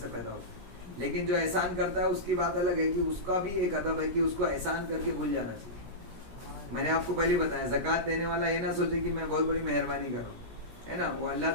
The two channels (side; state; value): left; late; 17 ms